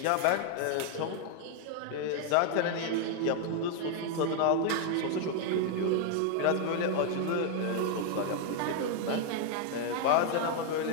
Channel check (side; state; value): both; different; correlation 0.00